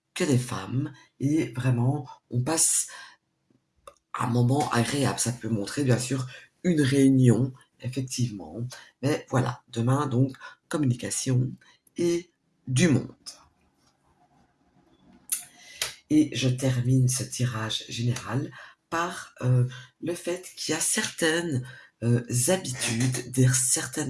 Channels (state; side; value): identical; both; correlation 1.00